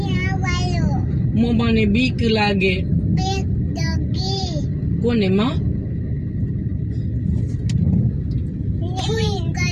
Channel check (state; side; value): identical; both; correlation 1.00